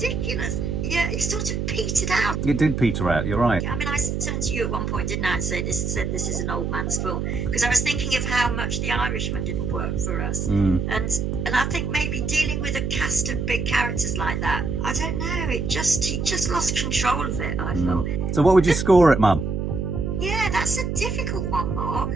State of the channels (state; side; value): noise; right; hum, 1 dB below the sound